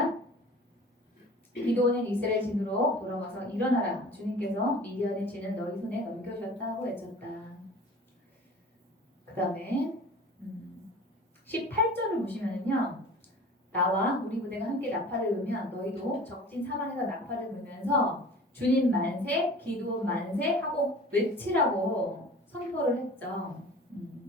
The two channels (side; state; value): both; normal; correlation 0.42